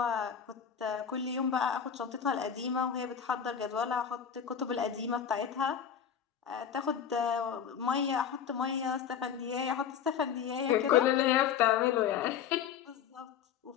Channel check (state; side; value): quieter; right; 8.1 dB